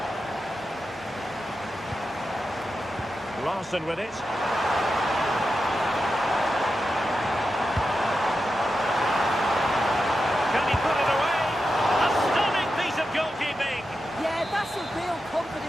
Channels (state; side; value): noise; left; hum, 26 dB below the sound